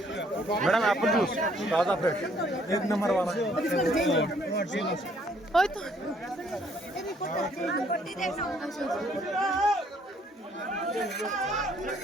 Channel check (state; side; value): normal; both; correlation 0.64